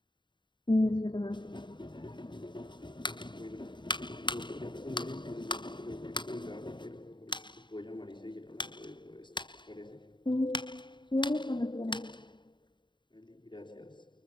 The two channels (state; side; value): late; right; 0.23 ms